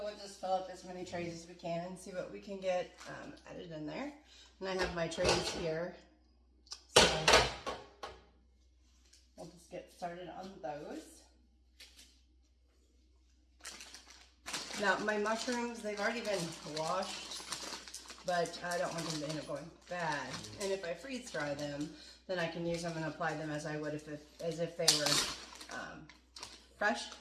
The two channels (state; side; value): identical; both; correlation 1.00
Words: we'll just fill up as many trays as we can and see what we can get added in there. And I have my trays here. So we'll just get started on those. Now my mushrooms, they've already been washed, but I don't want them to end up going bad. And if I freeze dry them, then I can use them and apply them as I would as if they were fresh.